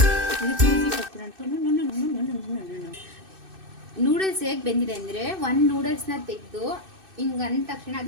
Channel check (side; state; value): left; late; 2.6 ms